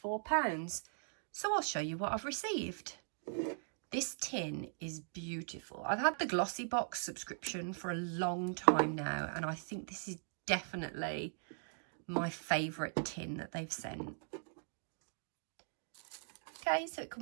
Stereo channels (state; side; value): silent; left; digital silence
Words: So I'll show you what I've received. This tin is beautiful. I've had the Glossybox subscription for a long time now, and I think this is definitely my favourite tin that they've sent. Okay, so it